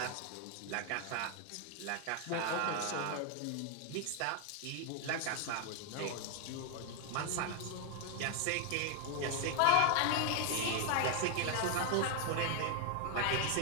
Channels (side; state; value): both; different; correlation 0.01